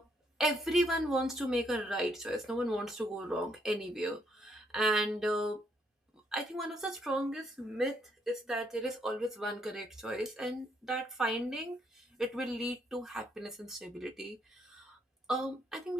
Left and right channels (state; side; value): normal; both; correlation 0.72